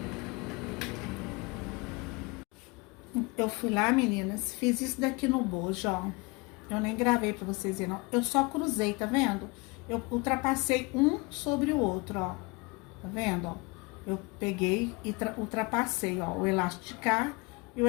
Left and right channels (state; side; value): quieter; right; 26.8 dB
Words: Eu fui lá, meninas, fiz isso daqui no bojo, ó. Eu nem gravei pra vocês verem, não. Eu só cruzei, tá vendo? Eu ultrapassei um sobre o outro, ó. Tá vendo, ó? Eu peguei e ultrapassei, ó, o elástico de cá e o